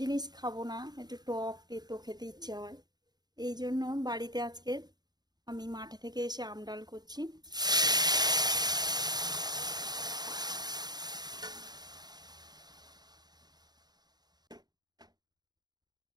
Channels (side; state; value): left; late; 0.20 ms